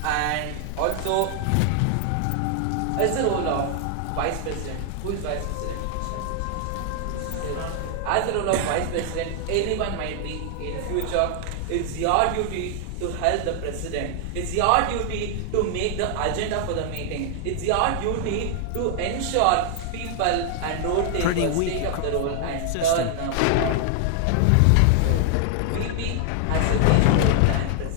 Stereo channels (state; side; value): different; both; correlation 0.00